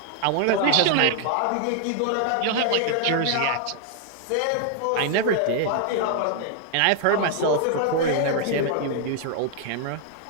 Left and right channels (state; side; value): different; both; correlation 0.00